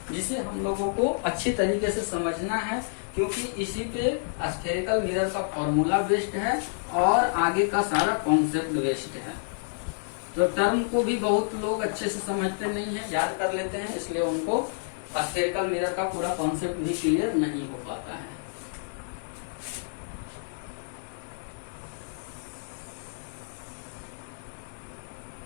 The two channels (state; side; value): silent; right; 59 dB below the other